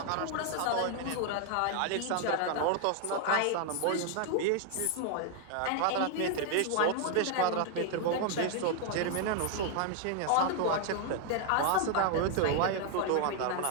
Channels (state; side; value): different; both; correlation 0.00